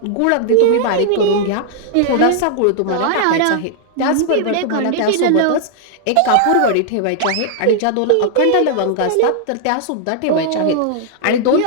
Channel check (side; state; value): both; different; correlation 0.00